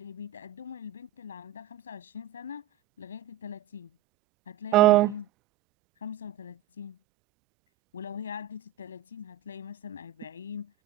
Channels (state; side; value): quieter; left; 10.7 dB